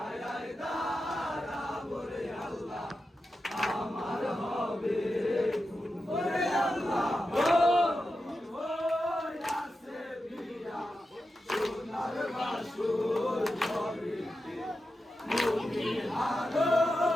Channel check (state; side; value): normal; both; correlation 0.90